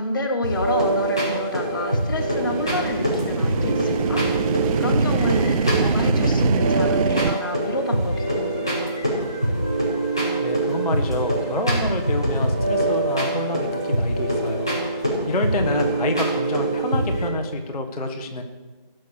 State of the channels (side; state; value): both; inverted; correlation -0.58